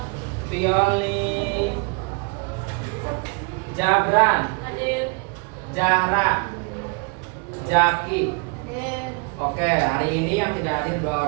Violi, Jabran, Jahra, Jaki. Oke, hari ini yang tidak hadir 2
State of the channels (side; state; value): left; quieter; 33.6 dB